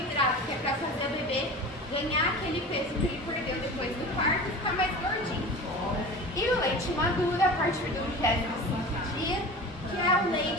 que é para fazer o bebê ganhar aquele peso que ele perdeu depois do parto e ficar mais gordinho. E o leite maduro, a partir do 25º dia, que é o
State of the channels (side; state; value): both; normal; correlation 0.35